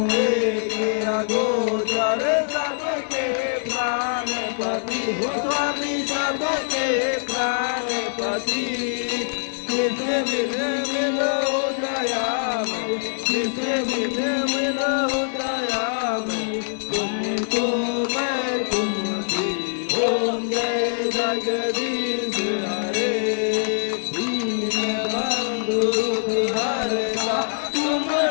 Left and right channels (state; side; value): silent; right; digital silence